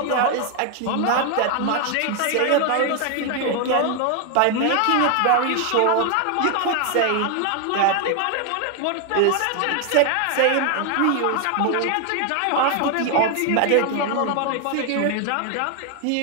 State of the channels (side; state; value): both; different; correlation 0.01